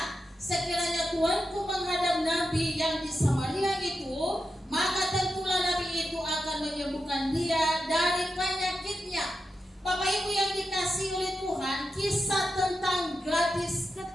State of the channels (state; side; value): normal; both; correlation 0.89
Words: sekiranya tuanku menghadap nabi yang di Samaria itu, maka tentulah nabi itu akan menyembuhkan dia dari penyakitnya. Bapak Ibu yang dikasihi oleh Tuhan, kisah tentang gadis